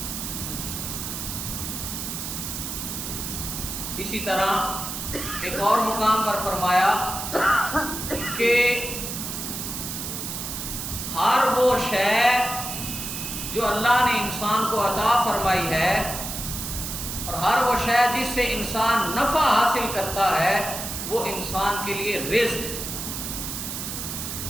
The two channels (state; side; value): noise; right; hiss, 5 dB below the sound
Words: اسی طرح ایک اور مقام پر فرمایا کہ ہر وہ شے جو اللہ نے انسان کو عطا فرمائی ہے اور ہر وہ شے جس سے انسان نفع حاصل کرتا ہے وہ انسان کے لیے رزق ہے۔